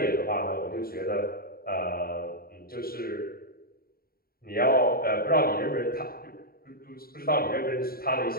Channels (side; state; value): right; late; 0.43 ms